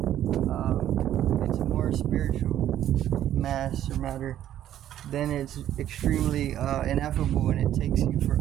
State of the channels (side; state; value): left; quieter; 11.6 dB